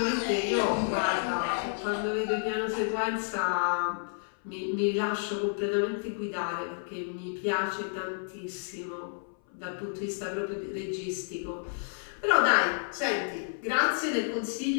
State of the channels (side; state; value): right; silent; 58 dB below the other